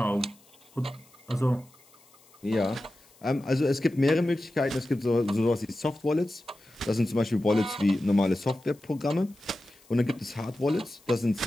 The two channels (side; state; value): left; noise; hiss, 28 dB below the sound